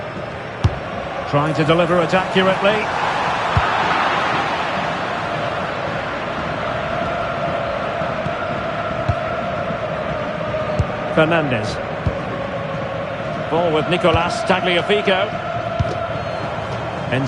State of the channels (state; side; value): identical; both; correlation 1.00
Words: Trying to deliver it accurately. Fernandez. Ball with Nicolas Tagliafico.